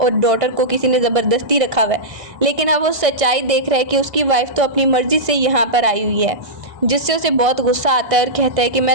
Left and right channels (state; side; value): late; left; 1.6 ms